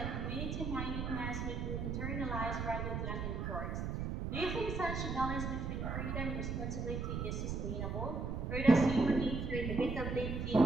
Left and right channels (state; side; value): noise; right; rumble, 2 dB below the sound